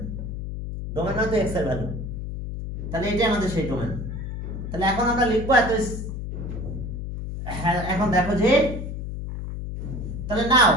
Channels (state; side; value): noise; left; hum, 6 dB below the sound